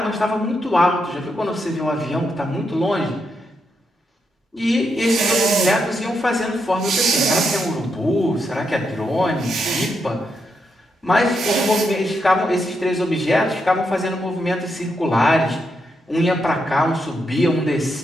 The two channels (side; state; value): both; normal; correlation 0.82